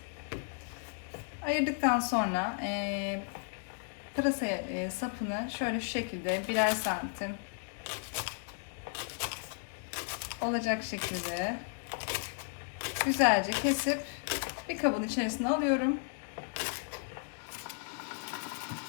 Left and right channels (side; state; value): right; silent; digital silence